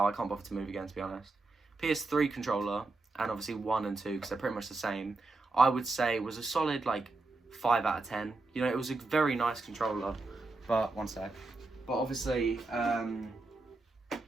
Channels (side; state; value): left; quieter; 3.4 dB